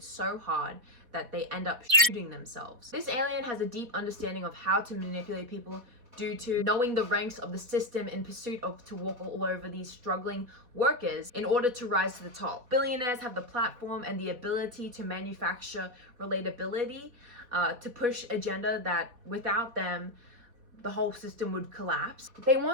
so hard that they end up shooting themselves. This alien has a deep understanding of how to manipulate people due to knowing the ranks of the system in pursuit of to walk all over these struggling workers in order to rise to the top. Billionaires have the platform and the ability to manufacture relatability, to push agenda that without them, the whole system would collapse. They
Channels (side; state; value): left; late; 4.1 ms